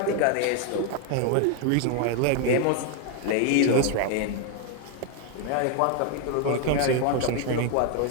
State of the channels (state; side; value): different; both; correlation 0.01